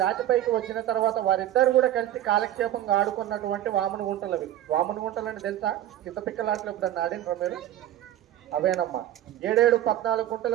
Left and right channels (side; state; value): left; quieter; 12.6 dB